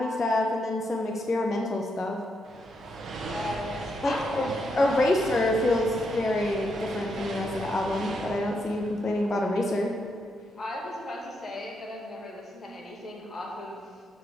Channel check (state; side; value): normal; both; correlation 0.81